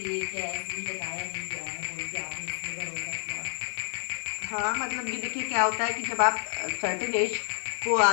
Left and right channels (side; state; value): right; silent; 58 dB below the other